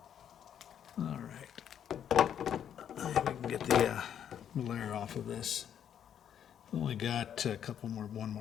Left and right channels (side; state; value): right; quieter; 9.2 dB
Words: All right. We can get the glare off of this. Only got one